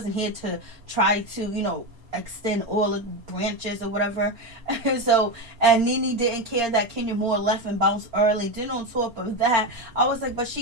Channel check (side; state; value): left; late; 4.3 ms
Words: here to try to, extend all the branches or whatever. And Nene didn't care that Kenya Moore left and bounced early. Then on top of that, I was like, but